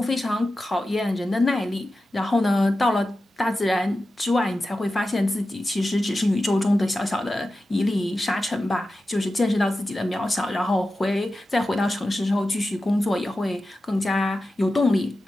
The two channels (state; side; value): normal; both; correlation 0.93